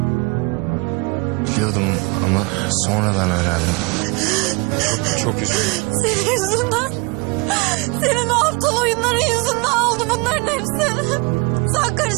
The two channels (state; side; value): quieter; left; 28.3 dB